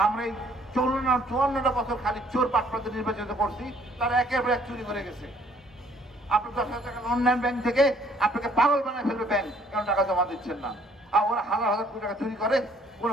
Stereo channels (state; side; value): normal; both; correlation 0.61